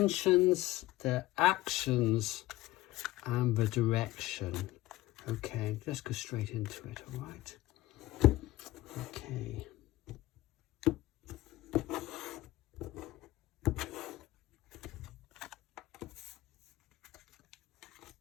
their actions, and the direction. Okay, let's go straight into it, all right? Okay.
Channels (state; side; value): quieter; right; 17.3 dB